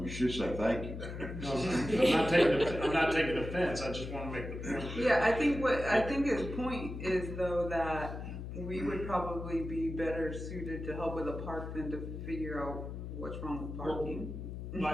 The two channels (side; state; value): left; noise; hum, 7 dB below the sound